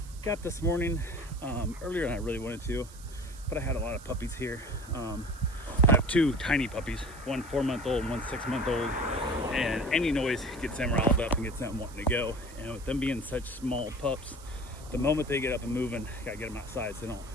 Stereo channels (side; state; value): right; noise; hiss, 20 dB below the sound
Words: Got this morning earlier than I really wanted to, but I had a lot of puppies here. I have two tiny puppies, one 4-month-old and one 6-month-old, and any noise gets them riled up and gets them wanting to go. And with them being such small pups, the moment they get up and moving, gotta get them outside so they